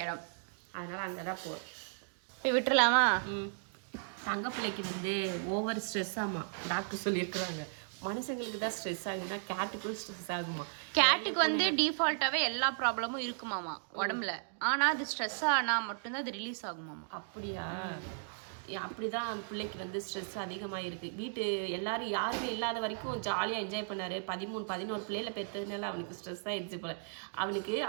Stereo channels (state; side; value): silent; left; digital silence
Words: இடம். அதனால அங்கே தான் போகிறோம். போய் விட்டுலாமா? தங்க பிள்ளைக்கு வந்து ஓவர் ஸ்ட்ரெஸ் ஆமா டாக்டர் சொல்லியிருக்கிறாங்க. மனுஷங்களுக்கு தான் ஸ்ட்ரெஸ் ஆகுதுன்னா கேட்டுக்கும் ஸ்ட்ரெஸ் ஆகுமா? கேட்டுக்கு வந்து டிஃபால்ட்டாவே எல்லா ப்ராப்ளமும் இருக்குமாமா உடம்புல. ஆனா அது ஸ்ட்ரெஸ் ஆனா மட்டும்தான் அது ரிலீஸ் ஆகுமாமா. அப்படியா? அப்படிதான் பிள்ளைக்கு வந்து ஸ்ட்ரெஸ் அதிகமாக இருக்கு. வீட்டு எல்லாரும் யாருமே இல்லாத வரைக்கும் ஜாலியாக என்ஜாய் பண்ணாரு. 13-14 பிள்ளைல பெற்றதுனால அவனுக்கு ஸ்ட்ரெஸ் ஆயிடுச்சு போல. அவனுக்கு